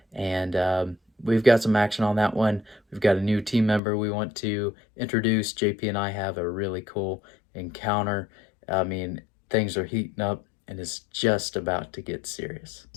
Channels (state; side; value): drops out; right; at 3.8 s